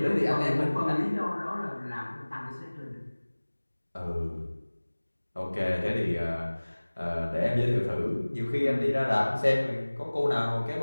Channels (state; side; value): inverted; both; correlation -1.00